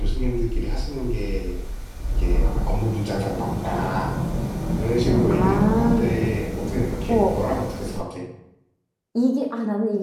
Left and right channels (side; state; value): both; identical; correlation 1.00